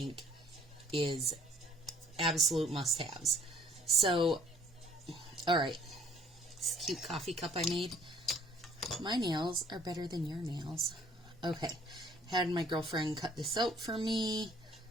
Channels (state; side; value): normal; both; correlation 0.59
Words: is absolute must-haves. So, alright, this cute coffee cup I made. My nails are better than your nails. Okay, had my girlfriend cut this out for me,